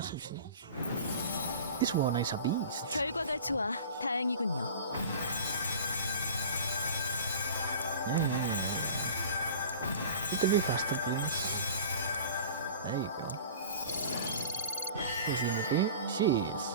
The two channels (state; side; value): inverted; both; correlation -0.41